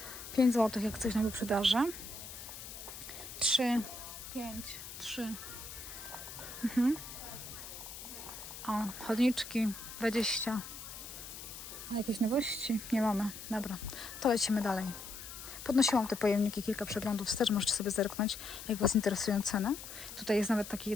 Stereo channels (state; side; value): noise; left; hiss, 11 dB below the sound